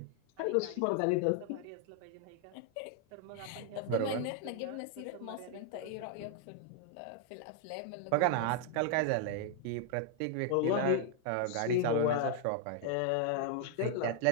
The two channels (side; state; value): both; different; correlation 0.00